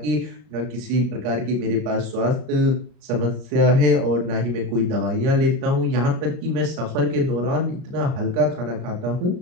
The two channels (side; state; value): left; late; 38 ms